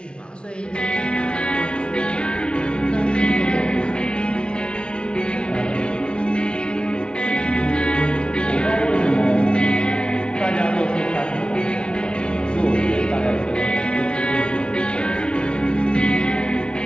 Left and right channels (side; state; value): right; late; 0.056 ms